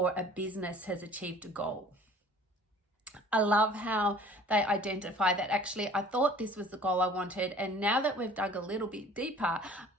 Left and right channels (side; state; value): both; normal; correlation 0.49